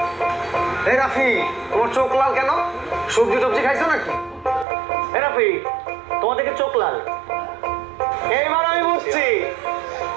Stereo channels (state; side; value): drops out; left; at 4.7 s